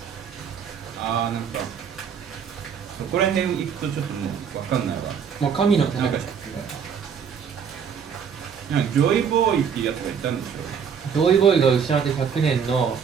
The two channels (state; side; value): quieter; left; 7.1 dB